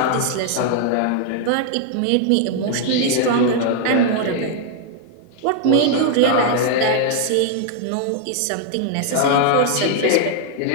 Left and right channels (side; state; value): both; different; correlation 0.00